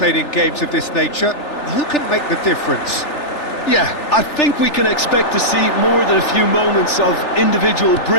in games of this nature. Who can make the difference? Yeah, I think we can expect to see more than a few moments of individual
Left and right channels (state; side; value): late; right; 3.4 ms